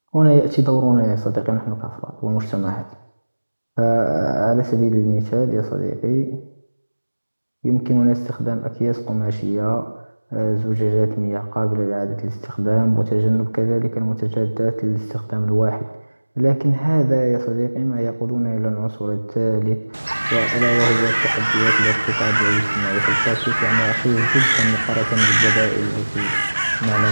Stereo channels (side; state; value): both; inverted; correlation -1.00